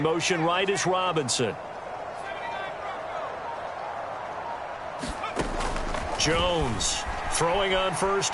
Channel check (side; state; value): both; identical; correlation 1.00